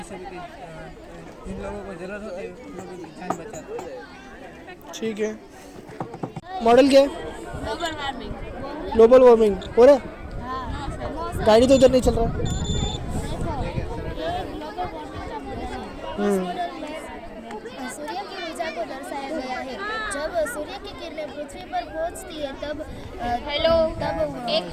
सब कि जिन लोगों को ज़रूरत होती है उन लोगों की जान बचाता है। ठीक है। मॉडल क्या है? Global warming. ग्लोबल वार्मिंग हो रहा है? हाँ, गाड़ी तो इधर नहीं चल रहा। देखो, ये ग्लोबल वार्मिंग का मॉडल है। इस मॉडल में सूर्य की ऊर्जा को दर्शाया गया है। जब सूर्य की किरणें पृथ्वी पर पहुंचती है तब तब एक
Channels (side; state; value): both; identical; correlation 1.00